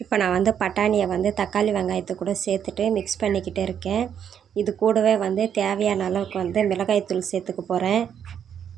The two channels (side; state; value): left; quieter; 8.6 dB